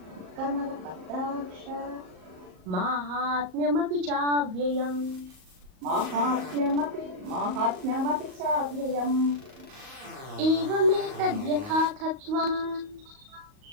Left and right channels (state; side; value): late; left; 38 ms